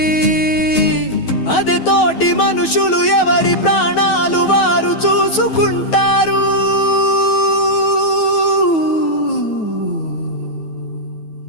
అదే తోటి మనుషులు ఎవరి ప్రాణాలు వారు చూసుకుంటారు.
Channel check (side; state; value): right; late; 9.2 ms